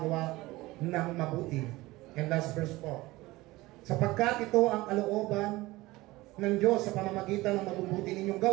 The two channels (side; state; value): left; quieter; 19.6 dB